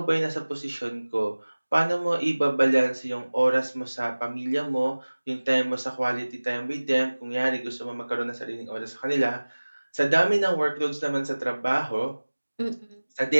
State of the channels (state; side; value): inverted; both; correlation -1.00